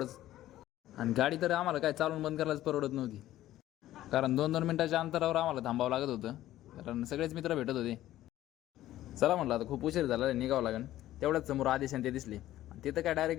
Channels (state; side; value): quieter; right; 14.1 dB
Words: आणि गाडी तर आम्हाला काय चालून बंद करायलाच परवडत नव्हती, कारण 2-2 मिनिटाच्या अंतरावर आम्हाला थांबावं लागत होतं, कारण सगळेच मित्र भेटत होते. चला म्हटलं आता खूप उशीर झाला, निघावं लागेल. तेवढ्याच समोर आदेश आणि ते दिसले आणि तिथं काय